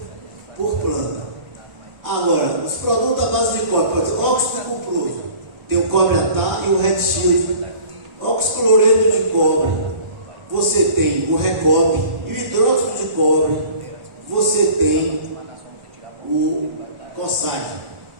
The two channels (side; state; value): left; late; 1.4 ms